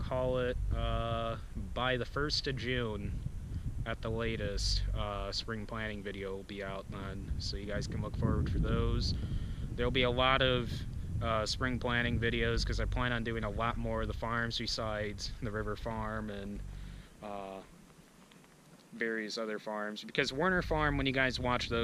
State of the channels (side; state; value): both; identical; correlation 1.00